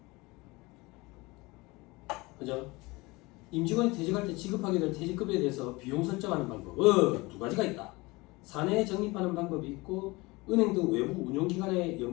그죠? 임직원이 퇴직할 때 지급하게 될 퇴직급여에 대해서 비용 설정하는 방법 두 가지가 있다. 사내에 적립하는 방법이 있고 은행 등 외부 운용기관에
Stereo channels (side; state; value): right; quieter; 23.3 dB